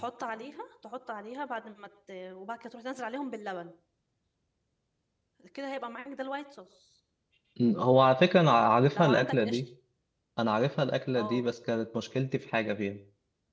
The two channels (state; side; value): identical; both; correlation 1.00